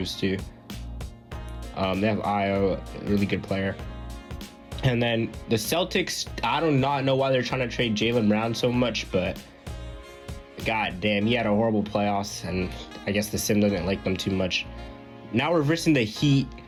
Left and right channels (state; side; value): identical; both; correlation 1.00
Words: too. They have Io, a really good player. And then the Celtics. I do not know why they're trying to trade Jaylen Brown so much, but god damn, he had a horrible playoffs, and I guess the sim doesn't like them too much. Now we're versing the Heat,